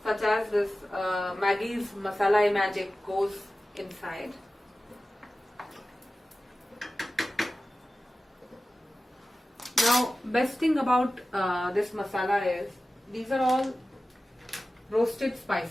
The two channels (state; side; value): normal; both; correlation 0.95